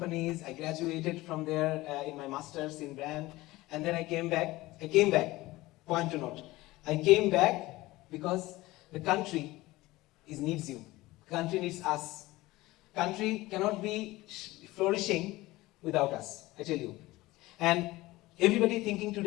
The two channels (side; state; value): right; quieter; 19.0 dB